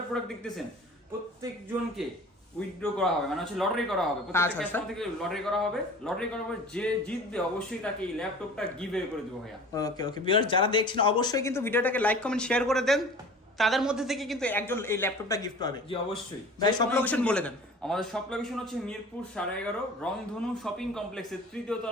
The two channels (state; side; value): normal; both; correlation 0.41